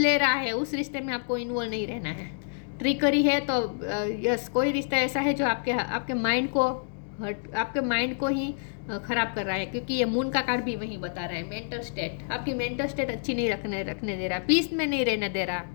रहा है उस रिश्ते में आपको इन्वॉल्व नहीं रहना है। ट्रिकरी है तो यस, कोई रिश्ता ऐसा है जो आपके माइंड को ही खराब कर रहा है, क्योंकि ये मून का कार्ड भी वही बता रहा है। मेंटल स्टेट, आपकी मेंटल स्टेट अच्छी नहीं रखने दे रहा, पीस में नहीं रहने दे रहा।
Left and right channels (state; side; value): silent; right; digital silence